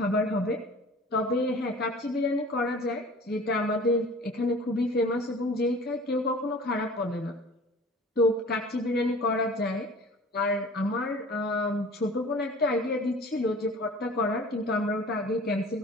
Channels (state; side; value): normal; both; correlation 0.44